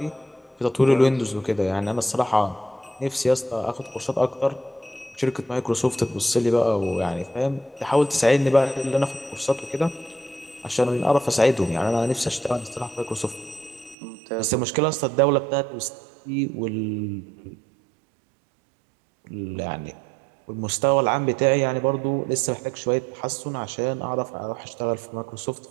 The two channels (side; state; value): left; drops out; at 14.0 s